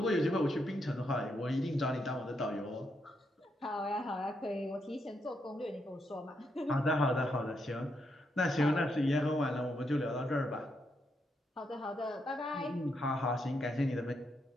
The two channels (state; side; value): normal; both; correlation 0.80